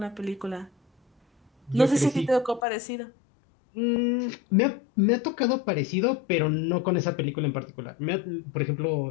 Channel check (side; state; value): right; drops out; at 2.7 s